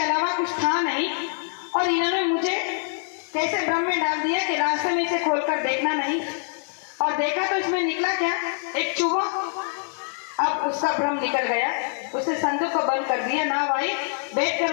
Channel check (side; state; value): right; silent; digital silence